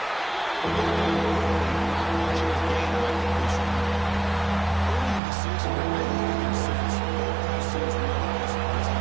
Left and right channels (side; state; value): left; drops out; at 5.2 s